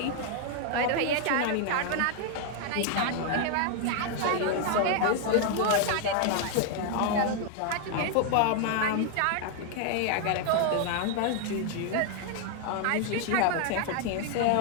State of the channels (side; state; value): both; different; correlation 0.00